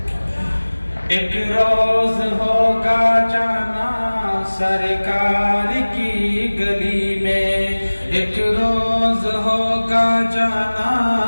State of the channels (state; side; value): inverted; both; correlation -1.00